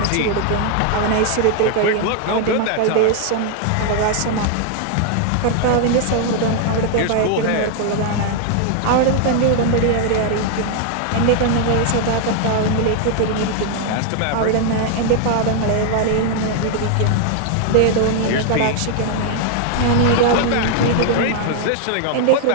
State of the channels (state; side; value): different; both; correlation 0.00